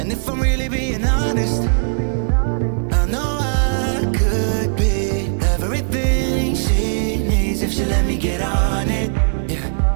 if I'm really being honest, I know I could be everything she needs if she let me get on it. Yeah.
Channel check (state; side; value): silent; left; digital silence